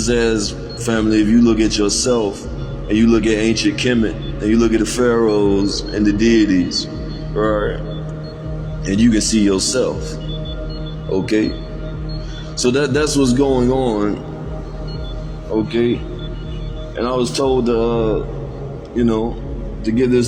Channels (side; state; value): both; identical; correlation 1.00